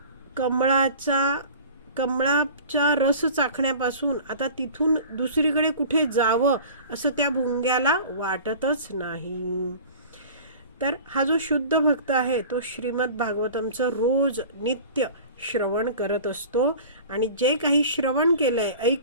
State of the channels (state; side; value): inverted; both; correlation -0.41